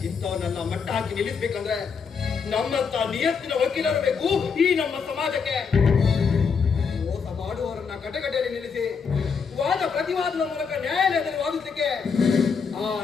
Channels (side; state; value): right; quieter; 5.8 dB